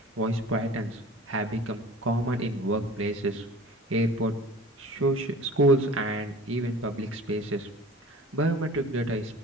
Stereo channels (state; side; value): normal; both; correlation 0.43